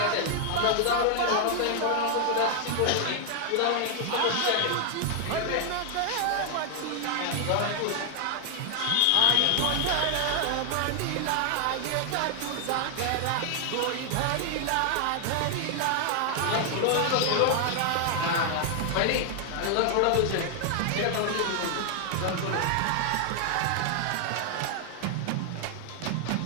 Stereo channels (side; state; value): both; different; correlation 0.00